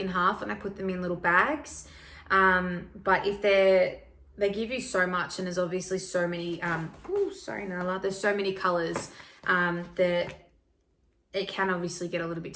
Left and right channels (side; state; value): both; identical; correlation 1.00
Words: half and I put them in little bags. But if they give you so much, and there's obviously so many, sorry Nala, there's so many colors that it can obviously get a little bit